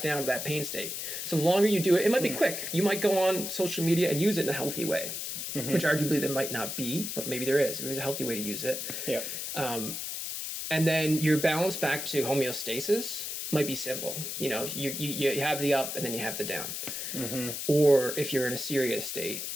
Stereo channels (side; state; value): left; noise; hiss, 5 dB below the sound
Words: down to that pain state. So the longer you do it, it might be quick. You might go on social media and use it in a healthy way, which arguably there might not be, but maybe there is. There's a healthy way to use it. Yeah. And then your balance back to homeostasis might be simple. You have the up and then you have the down. Or if you're in a serious state